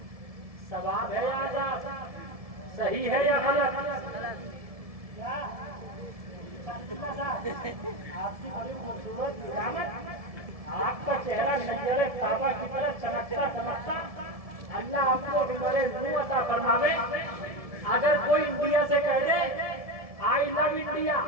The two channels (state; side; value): late; left; 1.7 ms